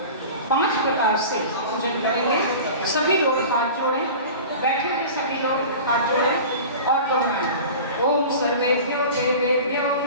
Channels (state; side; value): inverted; both; correlation -0.36